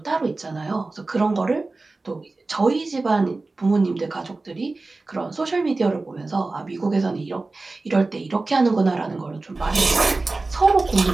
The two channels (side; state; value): left; quieter; 3.4 dB